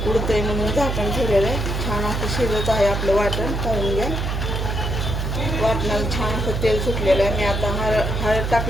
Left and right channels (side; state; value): right; noise; hum, 2 dB below the sound